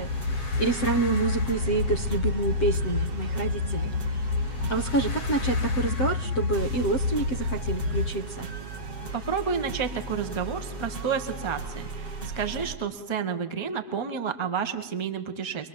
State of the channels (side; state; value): right; late; 7.6 ms